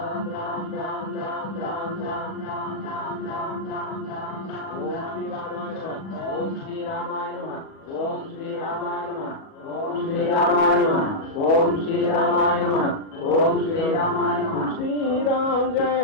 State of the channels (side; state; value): right; late; 37 ms